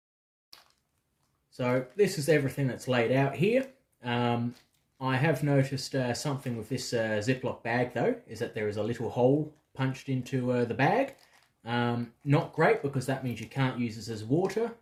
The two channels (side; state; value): both; identical; correlation 1.00